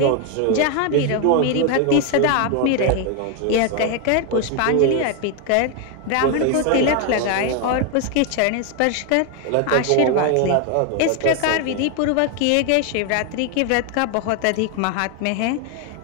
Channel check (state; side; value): different; both; correlation 0.01